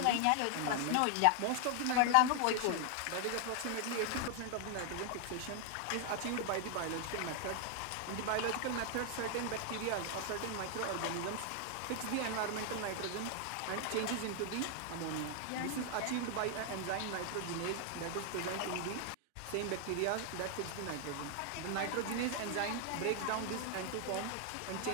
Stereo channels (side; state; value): both; different; correlation 0.00